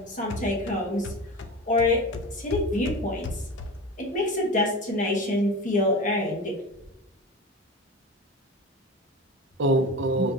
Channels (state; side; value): normal; both; correlation 0.29